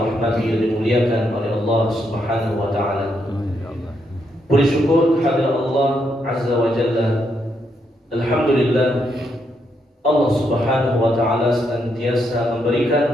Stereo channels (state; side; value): normal; both; correlation 0.78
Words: dan dimuliakan oleh Allah Subhanahu wa taala. Puji syukur kehadirat Allah Azza wa Jalla. Alhamdulillah, Allah Subhanahu wa taala senantiasa